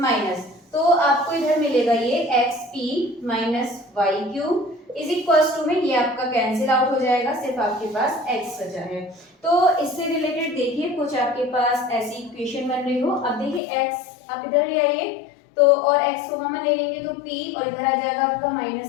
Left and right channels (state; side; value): drops out; right; at 13.6 s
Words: तो आपको इधर मिलेगा ये xp minus yq is equals to में ये आपका कैंसिल आउट हो जाएगा, सिर्फ आपके पास x बचा है। तो इससे रिलेटेड देखिए कुछ आपके पास ऐसी इक्वेशन बन रही हो। अब देखिए x आप इधर ले आइए तो और x को कॉमन ले लेंगे तो p और इधर आ जाएगा आपका